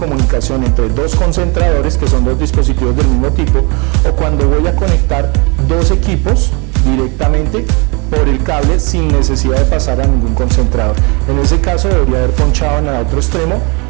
entre dos concentradores, que son dos dispositivos del mismo tipo, o cuando voy a conectar dos equipos directamente por el cable sin necesidad de pasar a ningún concentrador. En ese caso debería haber ponchado en el otro extremo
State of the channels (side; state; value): left; quieter; 30.9 dB